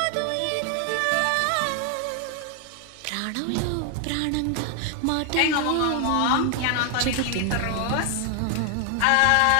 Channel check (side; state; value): both; different; correlation 0.00